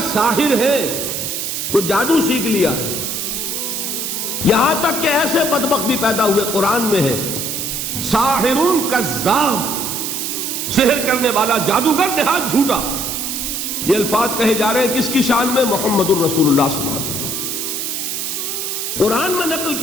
ساحر ہے، کچھ جادو سیکھ لیا ہے، یہاں تک کہ ایسے بدبخت بھی پیدا ہوئے، قرآن میں ہے ساحر کذاب، سحر کرنے والا جادوگر نہایت جھوٹا۔ یہ الفاظ کہے جا رہے ہیں کس کی شان میں؟ محمد الرسول اللہ صلی اللہ علیہ وسلم۔ قرآن میں نقل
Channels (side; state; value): right; noise; hiss, 3 dB below the sound